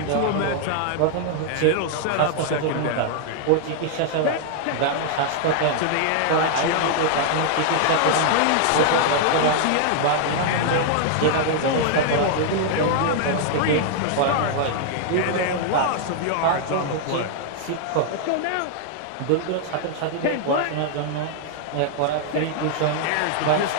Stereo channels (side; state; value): both; different; correlation -0.01